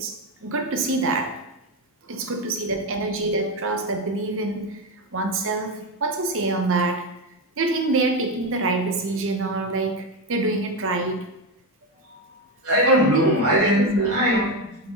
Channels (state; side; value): normal; both; correlation 0.12